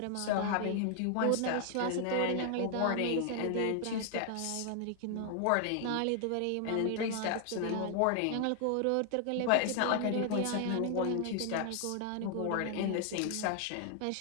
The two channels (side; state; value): both; different; correlation 0.00